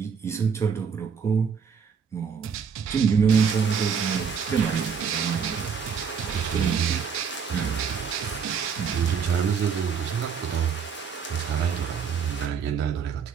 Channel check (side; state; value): left; quieter; 6.5 dB